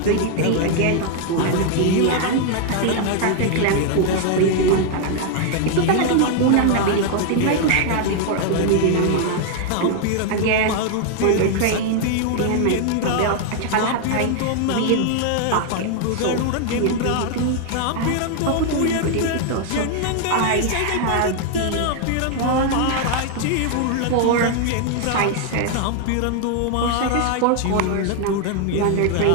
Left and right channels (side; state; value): both; different; correlation 0.00